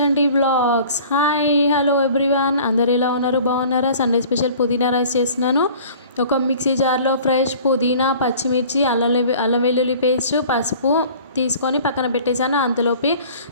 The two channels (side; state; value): both; inverted; correlation -0.47